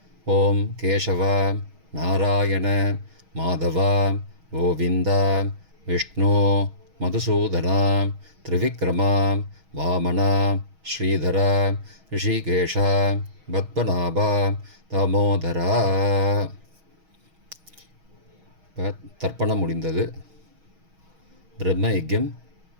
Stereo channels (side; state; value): left; late; 6.3 ms